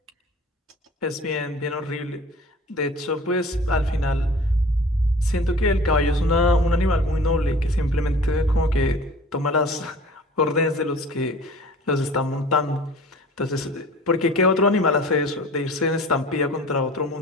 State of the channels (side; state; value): both; normal; correlation 0.45